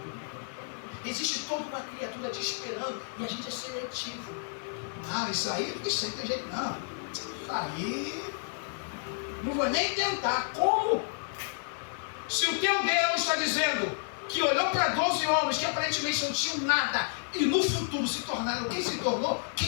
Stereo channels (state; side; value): silent; right; digital silence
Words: Existe toda uma criatura te esperando e a gente é seletivo. Isso aí é porque sempre tem jeito. Não. Isso aí. Não vou nem tentar. Como? Se o teu Deus está dizendo que olhou para 12 homens que aparentemente não tinham nada e no futuro se tornaram quem se tornou,